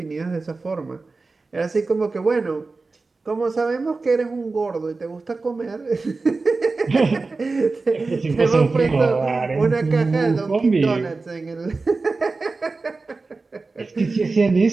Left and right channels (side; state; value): left; quieter; 3.8 dB